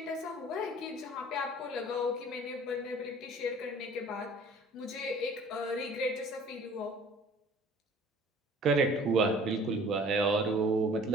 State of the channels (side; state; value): both; normal; correlation 0.50